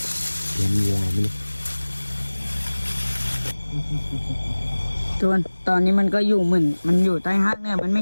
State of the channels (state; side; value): inverted; both; correlation -1.00